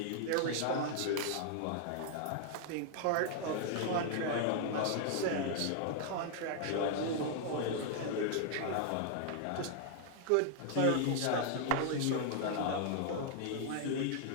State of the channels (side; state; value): both; different; correlation 0.00